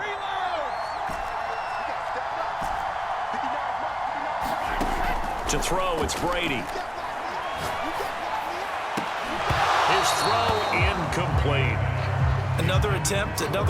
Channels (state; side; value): identical; both; correlation 1.00